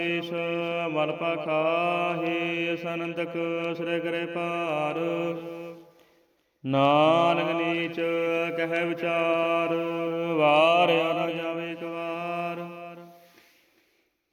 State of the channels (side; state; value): both; identical; correlation 1.00